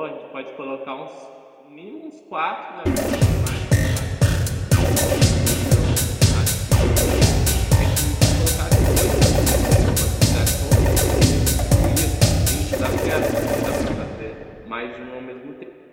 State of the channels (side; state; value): both; identical; correlation 1.00